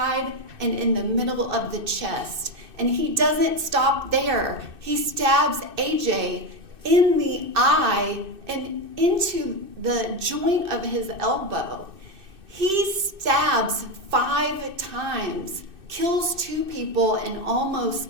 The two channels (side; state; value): left; late; 2.6 ms